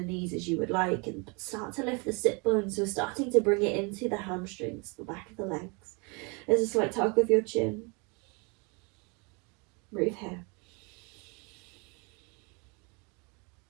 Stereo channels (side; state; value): left; quieter; 31.4 dB